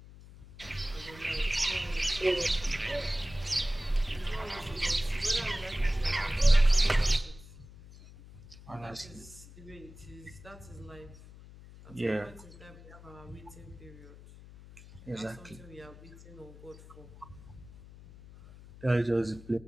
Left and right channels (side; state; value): left; noise; hum, 18 dB below the sound